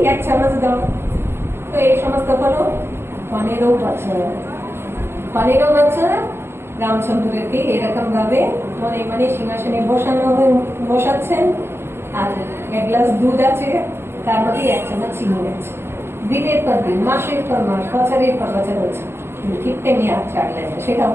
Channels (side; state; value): left; late; 0.12 ms